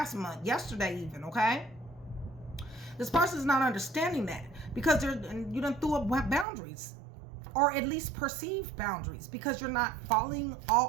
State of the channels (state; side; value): drops out; left; at 6.5 s